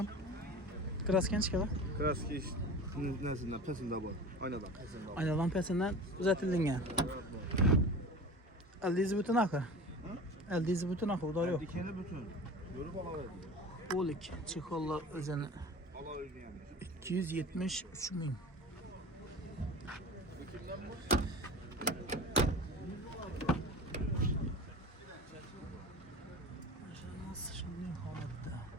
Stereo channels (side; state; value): both; normal; correlation 0.35